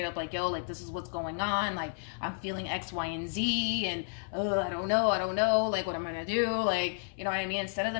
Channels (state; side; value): silent; right; 56 dB below the other